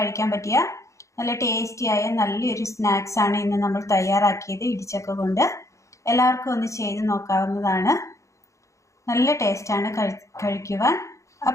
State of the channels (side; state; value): right; late; 0.15 ms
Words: പറ്റിയ നല്ല ടേസ്റ്റിയായ നല്ലൊരു സ്നാക്സ് ആണ് ഇന്ന് നമ്മൾ തയ്യാറാക്കിയത് ഇടിച്ചക്ക കൊണ്ട്. എല്ലാവർക്കും ഒന്ന് ചെയ്ത് നോക്കാവുന്നതാണ്. നല്ല ടേസ്റ്റാണ് കഴിക്കുവാൻ.